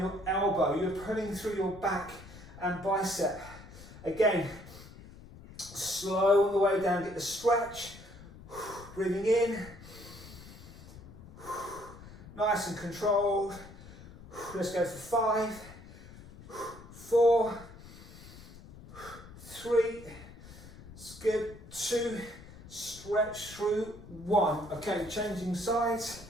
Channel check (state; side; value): noise; left; rumble, 17 dB below the sound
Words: elbow. You're pulling through your back and bicep. Again, slow on the way down. Get the stretch. Breathing in, nice and controlled. Let's go for 5, 4, 3, skip 2, stretch through 1. Okay, changing sides,